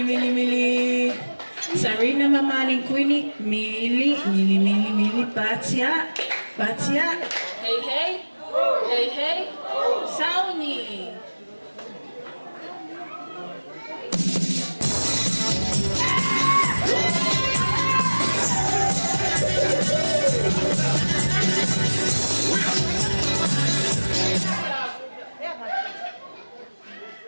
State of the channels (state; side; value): inverted; both; correlation -1.00